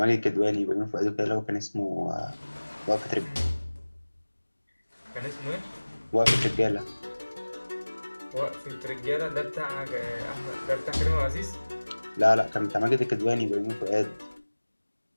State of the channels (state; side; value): inverted; both; correlation -1.00